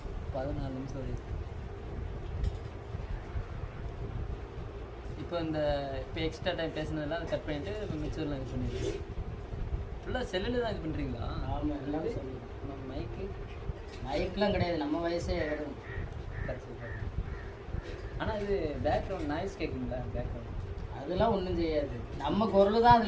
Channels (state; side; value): identical; both; correlation 1.00